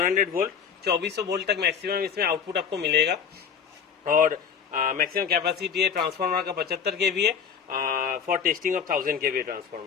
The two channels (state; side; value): quieter; right; 6.9 dB